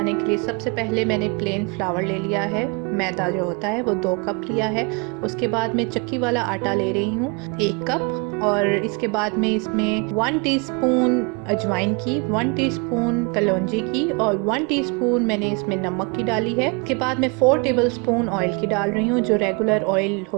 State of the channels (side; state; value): left; quieter; 31.6 dB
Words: के लिए सबसे पहले मैंने प्लेन फ्लावर ले लिया है। मैदा जो होता है वो 2 कप लिया है। उसके बाद मैं चक्की वाला आटा ले रही हूँ 1 कप, और इसके बाद में इसमें 1 टीस्पून अजवाइन की, 1 टीस्पून कलौंजी की और 1 टीस्पून मैंने इसमें नमक की डाली है। इसके बाद मैं 4 टेबलस्पून ऑयल की डाल रही हूँ, जो रेगुलर ऑयल